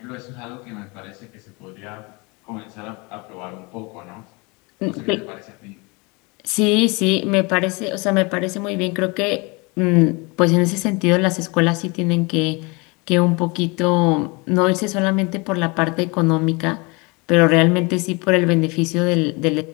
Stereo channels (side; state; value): right; quieter; 28.0 dB